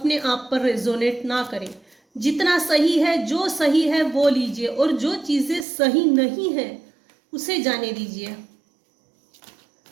आप पर रेजोनेट ना करें। जितना सही है, जो सही है वो लीजिए, और जो चीजें सही नहीं है उसे जाने दीजिए।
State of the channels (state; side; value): drops out; left; at 5.7 s